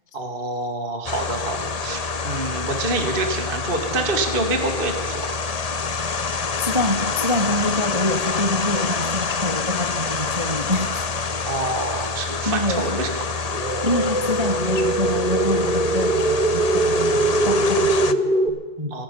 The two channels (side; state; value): left; late; 1.8 ms